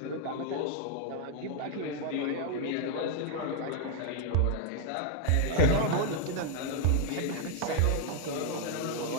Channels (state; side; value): different; both; correlation 0.00